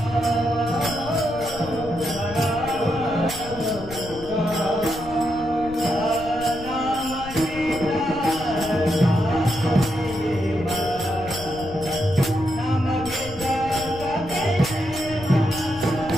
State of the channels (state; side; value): noise; left; rumble, 14 dB below the sound